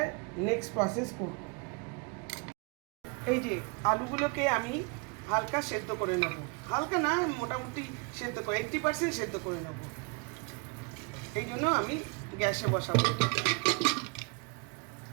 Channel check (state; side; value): quieter; left; 32.1 dB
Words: নেক্সট প্রসেস করব। এই যে আলুগুলোকে আমি হালকা সেদ্ধ করে নেব, হালকা না মোটামুটি সেদ্ধ করে 80% সেদ্ধ করে নেব। এই জন্য আমি গ্যাসে বসাবো।